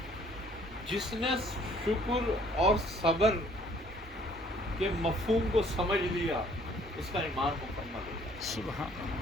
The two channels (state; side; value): normal; both; correlation 0.59